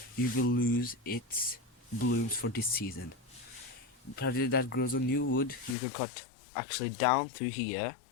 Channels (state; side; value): drops out; right; at 5.8 s